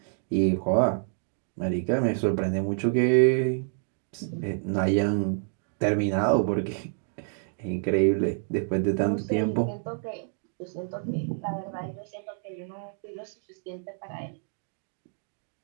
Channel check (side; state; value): left; silent; 59 dB below the other